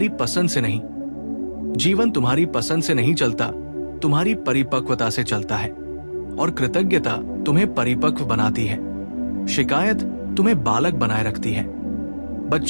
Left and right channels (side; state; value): both; inverted; correlation -1.00